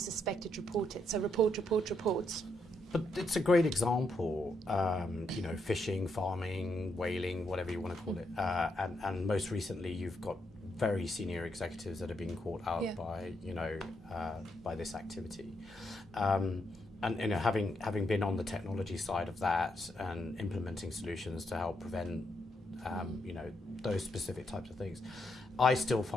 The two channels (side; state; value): both; normal; correlation 0.79